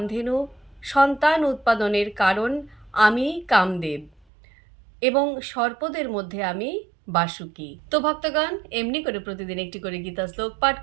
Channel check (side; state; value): left; drops out; at 4.2 s